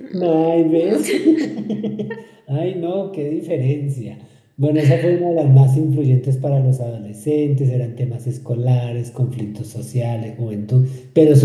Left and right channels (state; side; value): identical; both; correlation 1.00